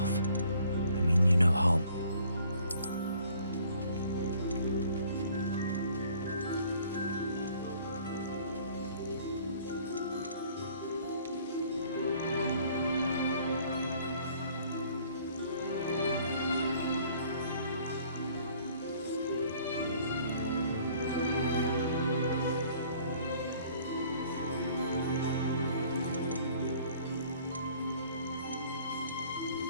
I mean you no harm.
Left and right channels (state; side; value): inverted; both; correlation -0.57